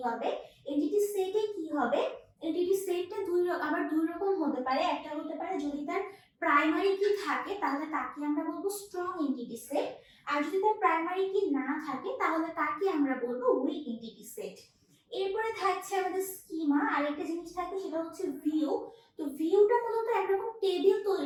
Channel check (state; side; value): identical; both; correlation 1.00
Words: হবে। এন্টিটি সেটে কি হবে, এন্টিটি সেটটা আবার দুই রকম হতে পারে। একটা হতে পারে যদি তার প্রাইমারি কি থাকে তাহলে তাকে আমরা বলবো স্ট্রং এন্টিটি সেট, আর যদি তার প্রাইমারি কি না থাকে তাহলে তাকে আমরা বলবো উইক এন্টিটি সেট। এরপরে থাকছে আমাদের স্কিমা, আরেকটা জিনিস থাকে সেটা হচ্ছে ভিউ। তো ভিউটা মূলত একরকম টেবিল